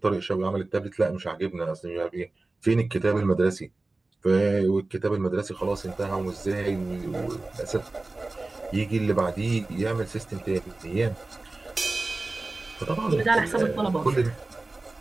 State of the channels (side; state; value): left; quieter; 3.2 dB